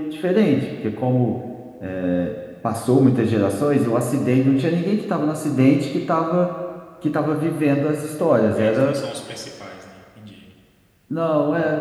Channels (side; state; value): both; identical; correlation 1.00